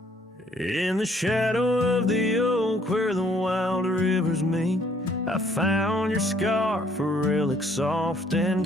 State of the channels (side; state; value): both; normal; correlation 0.64